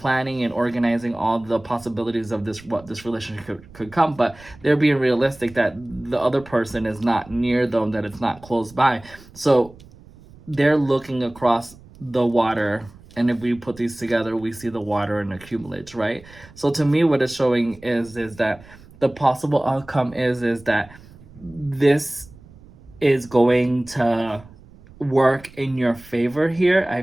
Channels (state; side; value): noise; right; rumble, 22 dB below the sound